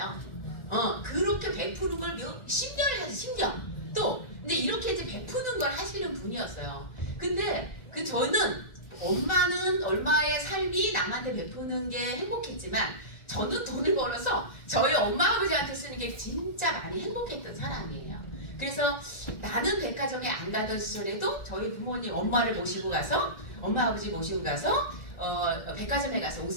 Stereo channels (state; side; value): late; right; 1.9 ms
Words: 그렇게 베푸는 걸 10년을 하지, 10년. 또, 근데 이렇게 이제 베푸는 걸 하시는 분이었어요. 근데 저는 엄마는 얼마의 삶이 남한테 베푸는 게 행복했지만 저는 돈을 벌어서 저희 엄마 아버지한테 쓰는 게 진짜 많이 행복했던 사람이에요. 그래서 나는 백화점에 안 가던 시절에도 저희 부모님 엄마를 모시고 가서 엄마 아버지 모시고 가서 백화점에 가서 옷